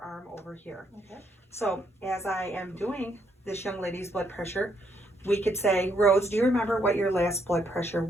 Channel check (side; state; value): both; normal; correlation 0.73